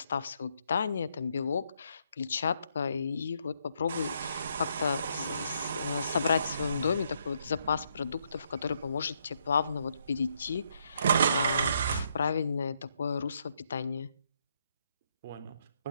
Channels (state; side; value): inverted; both; correlation -0.74